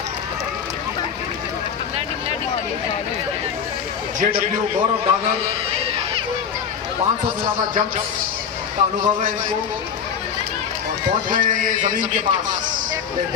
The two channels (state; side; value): quieter; right; 7.3 dB